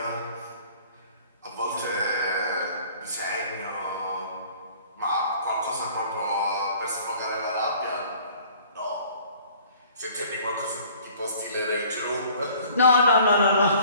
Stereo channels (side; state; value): both; inverted; correlation -0.52